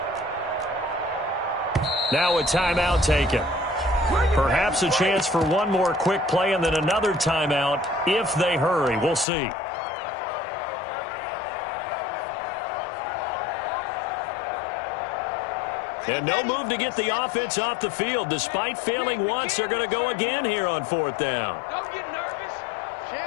Now a timeout taken. Perhaps a chance for one more quick play and then another timeout if they hurry. We'll see. And no move to get the offense off the field. Despite failing once, they're going to go again here on 4th down. Don't get nervous.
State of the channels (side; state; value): right; drops out; at 9.2 s